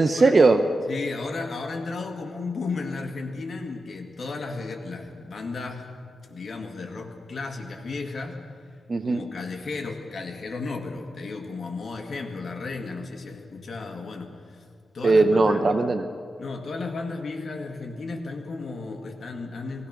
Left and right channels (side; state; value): both; normal; correlation 0.90